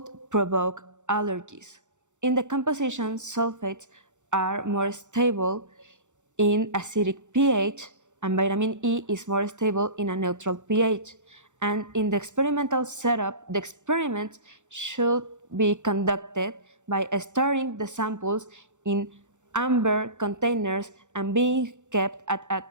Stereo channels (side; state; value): left; late; 0.85 ms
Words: provoke allergies. In the composition, sulfates are more stable in acidic pH, and vitamin E is more stable in a neutral pH. And in the experimental setup, the experiments should be conducted by storing the samples in amber containers and being kept at a